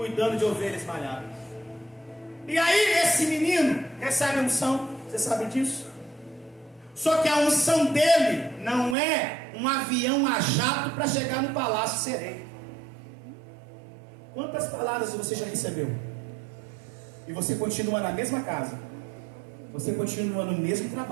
de ovelhas malhadas. E aí esse menino recebe a unção, você sabe disso? Só que a unção dele não é um avião a jato para chegar no palácio ser rei. Quantas palavras você já recebeu? E você continua na mesma casa, você continua no mesmo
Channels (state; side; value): drops out; left; at 9.0 s